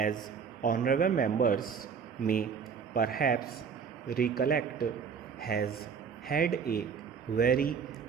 honorable members may perhaps recollect, has had a very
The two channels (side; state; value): left; quieter; 6.4 dB